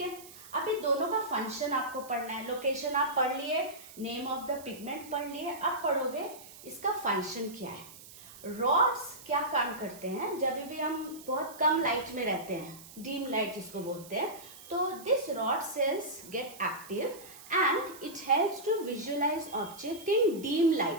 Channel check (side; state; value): right; noise; hiss, 18 dB below the sound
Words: है, अभी दोनों का फंक्शन आपको पढ़ना है। लोकेशन आप पढ़ लिए, नेम ऑफ द पिगमेंट पढ़ लिए, अब पढ़ोगे इसका फंक्शन क्या है। रॉड्स क्या काम करते हैं? जब भी हम बहुत कम लाइट में रहते हैं, डीम लाइट जिसको बोलते हैं, तो this rod cells get active and it helps to visualize object in dim